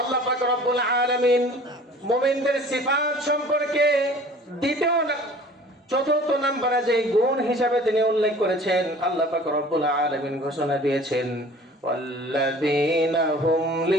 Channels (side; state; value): both; normal; correlation 0.47